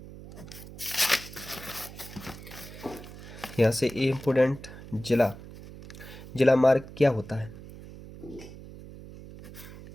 यहाँ से ये इम्पोर्टेंट। जिला, जिला मार्ग क्या होता है?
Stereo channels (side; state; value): right; noise; hum, 15 dB below the sound